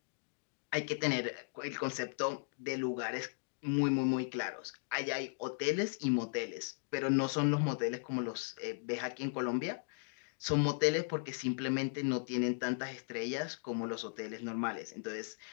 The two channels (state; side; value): silent; right; digital silence